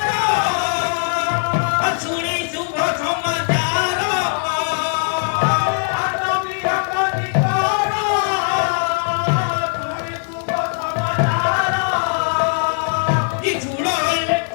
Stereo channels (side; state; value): right; silent; 66 dB below the other